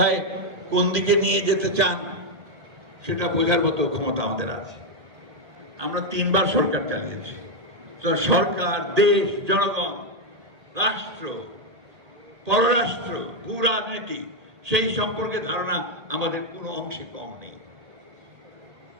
কোন দিকে নিয়ে যেতে চান সেটা বোঝার মতো ক্ষমতা আমাদের আছে। আমরা 3 বার সরকার চালিয়েছি। সরকার, দেশ, জনগণ, রাষ্ট্র, পররাষ্ট্র, ভূ রাজনীতি, সেই সম্পর্কে ধারণা আমাদের কোনো অংশে কম নেই।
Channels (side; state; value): left; late; 1.8 ms